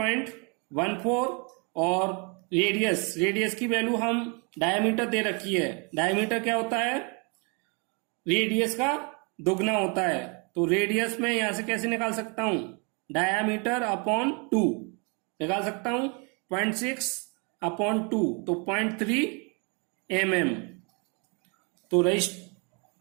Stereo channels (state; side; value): quieter; left; 33.9 dB